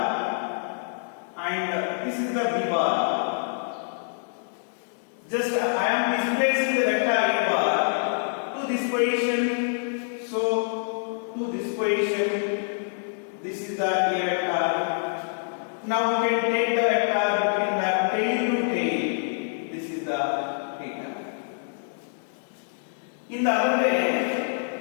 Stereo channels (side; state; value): right; silent; digital silence